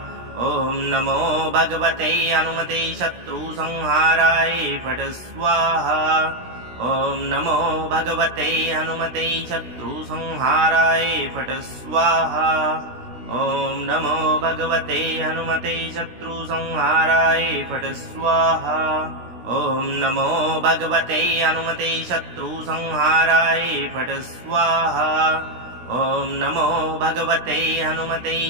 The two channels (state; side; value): late; left; 16 ms